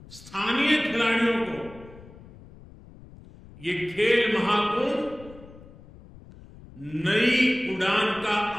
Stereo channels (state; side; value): noise; left; rumble, 20 dB below the sound